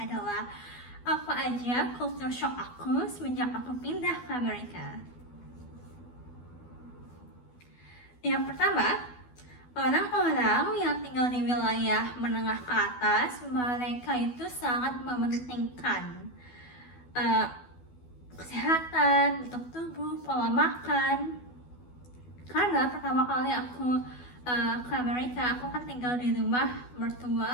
apa aja culture shock aku semenjak aku pindah ke Amerika. Yang pertama, orang-orang yang tinggal di wilayah menengah ke atas, mereka itu sangat mementingkan kesehatan, bentuk tubuh, pola makan. Karena pertama kali aku ke Amerika, aku kan tinggal di rumah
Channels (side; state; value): right; late; 12 ms